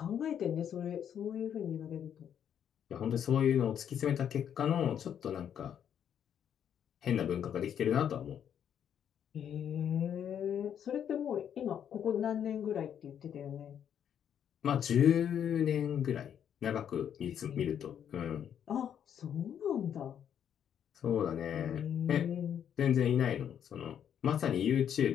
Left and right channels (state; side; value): quieter; right; 9.0 dB